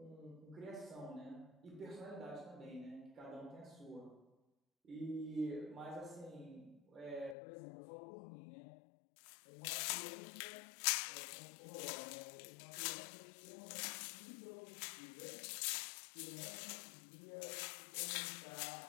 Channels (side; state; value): right; drops out; at 7.4 s